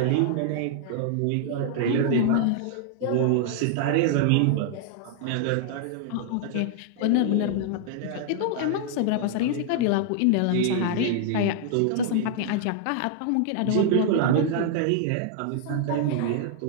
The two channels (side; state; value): both; different; correlation -0.01